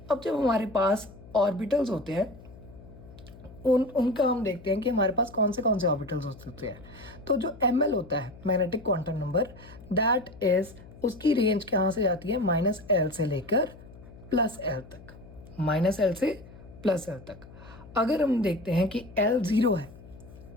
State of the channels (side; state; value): left; noise; hum, 19 dB below the sound